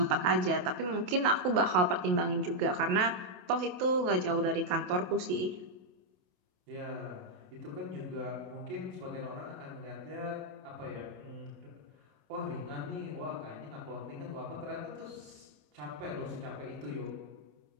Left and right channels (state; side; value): late; left; 28 ms